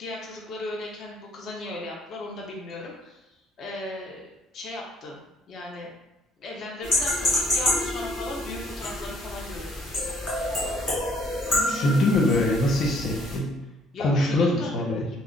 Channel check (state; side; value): normal; both; correlation 0.63